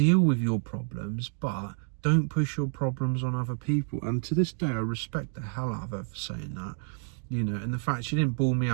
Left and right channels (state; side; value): silent; left; 59 dB below the other